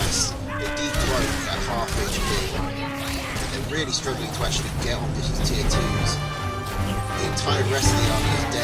They decloak at half HP. They're really struggling to actually get on this tier 2s. The entire rest of the army is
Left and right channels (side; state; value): both; identical; correlation 1.00